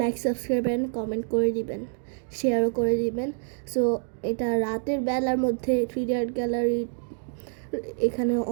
subscribe and comment করে দিবেন, শেয়ারও করে দিবেন। সো এটা রাতের বেলার মধ্যে 3D আর্ট গ্যালারি, এখানে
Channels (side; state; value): left; silent; digital silence